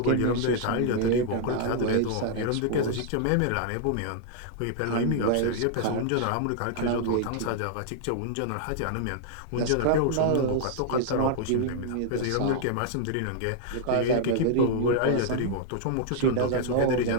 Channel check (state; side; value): different; both; correlation -0.01